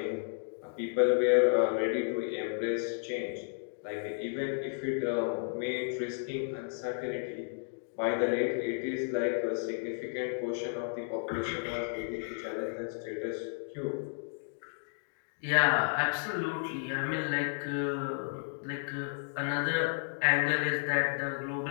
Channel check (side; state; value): right; silent; digital silence